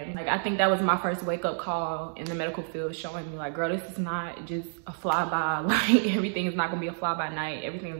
like I think that was my first wake up call in the medical field, showing me like, girl, this is not just a flyby. Like everything is not gonna be a fly by night. Everything is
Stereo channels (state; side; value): silent; left; digital silence